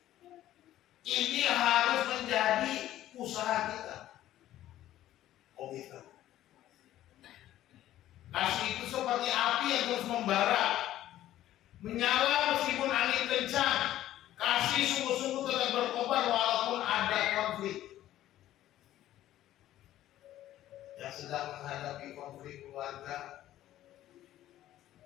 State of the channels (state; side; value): quieter; right; 13.4 dB